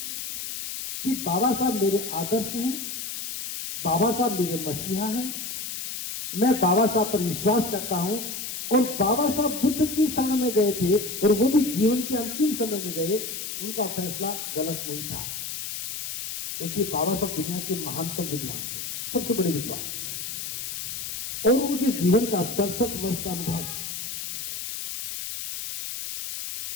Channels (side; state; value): left; noise; hiss, 6 dB below the sound